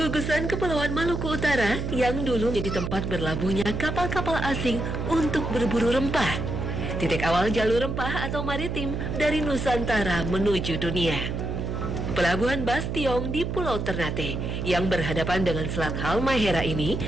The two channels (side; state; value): right; noise; hum, 3 dB below the sound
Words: Kepulauan Maluku Utara yang dulu menjadi tempat berlabuhnya kapal-kapal asing untuk berburu rempah. Titik awal jalur rempah atau maritim dari Nusantara menuju dunia. Pelabuhan Bastiong di Pulau Ternate yang berhadapan dengan Selat Halmahera ini